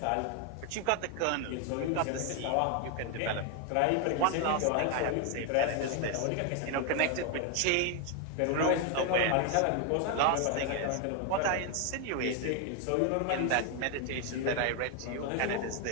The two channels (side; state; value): both; different; correlation 0.01